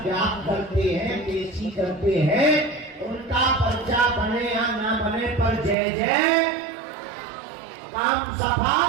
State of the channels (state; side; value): drops out; left; at 5.8 s